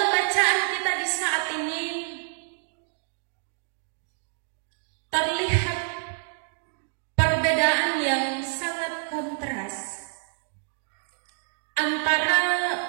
bacaan kita di saat ini terlihat perbedaan yang sangat kontras antara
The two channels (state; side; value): silent; left; digital silence